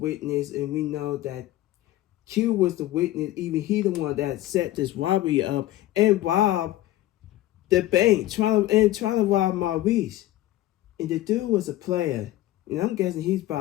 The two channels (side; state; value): right; quieter; 15.3 dB